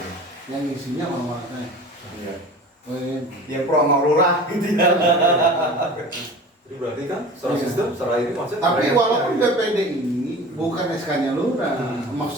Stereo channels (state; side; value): normal; both; correlation 0.38